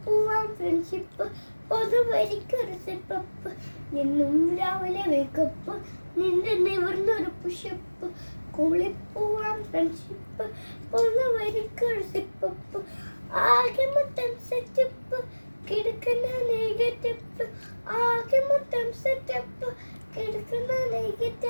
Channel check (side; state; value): both; inverted; correlation -1.00